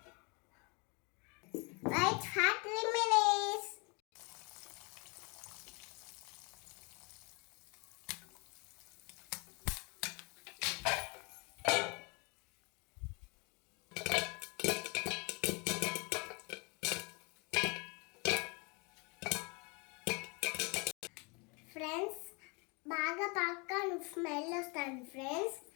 Wait for 3 minutes. Friends, బాగా పాప్కార్న్ స్మెల్ వస్తుంది ఫ్రెండ్స్.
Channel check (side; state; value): right; quieter; 30.8 dB